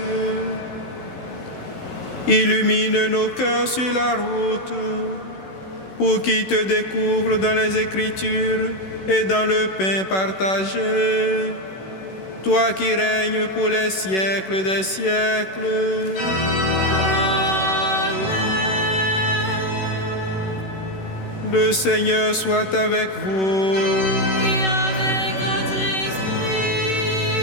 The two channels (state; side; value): late; right; 16 ms